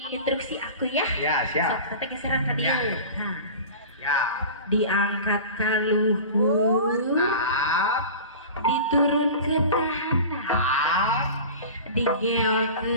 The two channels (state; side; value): inverted; both; correlation -0.36